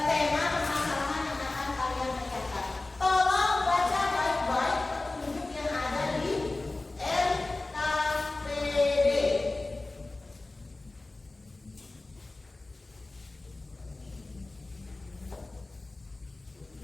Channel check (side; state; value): right; quieter; 3.1 dB